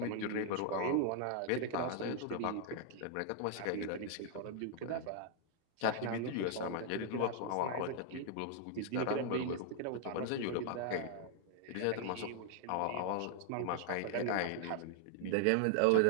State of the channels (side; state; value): both; different; correlation 0.00